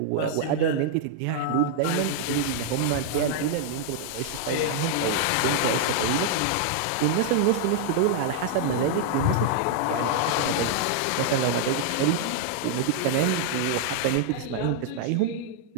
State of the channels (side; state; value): both; different; correlation -0.01